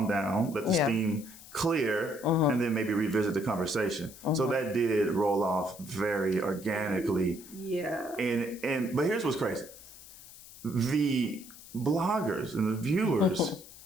down, let the steam clear, and then maybe revisit the conversation. So that did roll off very organically. Yeah. But here's what's crazy. The bloggers and the viewers,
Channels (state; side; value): noise; left; hiss, 18 dB below the sound